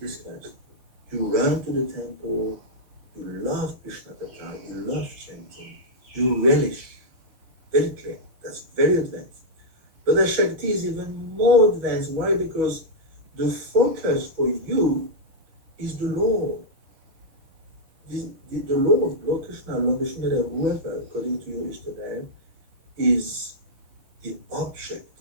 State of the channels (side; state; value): left; late; 6.1 ms